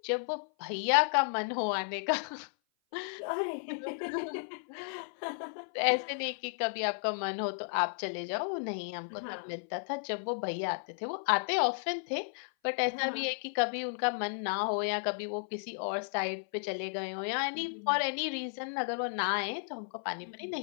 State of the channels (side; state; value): right; silent; 55 dB below the other